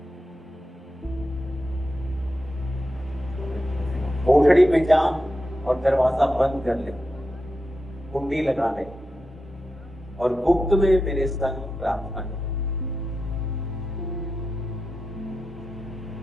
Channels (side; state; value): both; normal; correlation 0.89